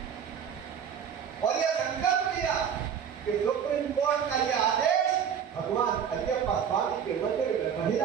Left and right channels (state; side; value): quieter; left; 8.0 dB